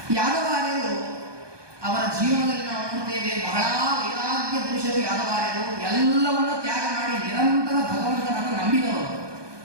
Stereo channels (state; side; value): late; left; 1.2 ms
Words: ಯಾದವಾರ್ಯರು ಅವರ ಜೀವನದಲ್ಲಿ ನಾವು ನೋಡ್ತೇವೆ, ಬಹಳ ವೈರಾಗ್ಯ ಪುರುಷರು ಯಾದವಾರ್ಯರು. ಎಲ್ಲವನ್ನ ತ್ಯಾಗ ಮಾಡಿ ನಿರಂತರ ಭಗವಂತನನ್ನು ನಂಬಿದವರು.